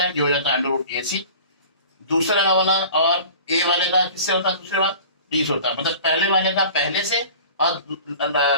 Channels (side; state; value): both; inverted; correlation -0.41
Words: है जो हो जाता है अंडर रूट ए सी. दूसरा वाला और ए वाले का किससे होता है, दूसरे वाला डी से होता है. मतलब पहले वाले का पहले से और